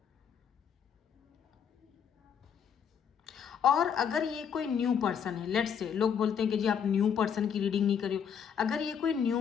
और अगर ये कोई न्यू पर्सन है, लेट्स से, लोग बोलते हैं कि जी आप न्यू पर्सन की रीडिंग नहीं करियो, अगर ये कोई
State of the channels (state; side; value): quieter; right; 7.7 dB